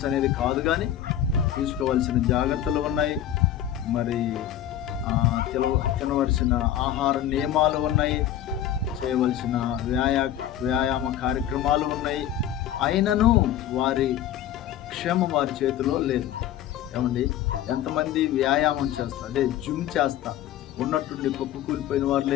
అనేది కాదు, కానీ తీసుకోవాల్సిన జాగ్రత్తలు ఉన్నాయి. మరి తినవలసిన ఆహార నియమాలు ఉన్నాయి, చేయవలసిన వ్యాయామ కార్యక్రమాలు ఉన్నాయి. అయినను వారి క్షేమం వారి చేతిలో లేదు. ఏమండి, ఎంతమంది వ్యాయామం చేస్తారు, అదే జిమ్ చేస్తా ఉన్నట్టుండి కుప్ప కూలిపోయిన వారు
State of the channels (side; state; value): right; quieter; 11.2 dB